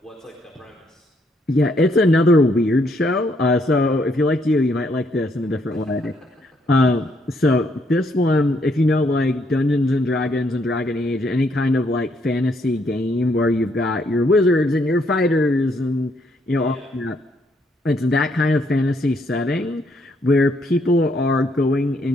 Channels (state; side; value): normal; both; correlation 0.72